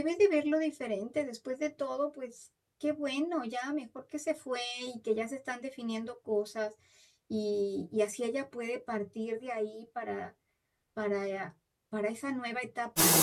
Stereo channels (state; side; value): identical; both; correlation 1.00